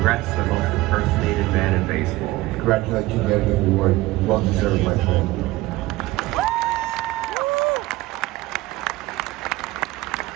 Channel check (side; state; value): left; quieter; 18.6 dB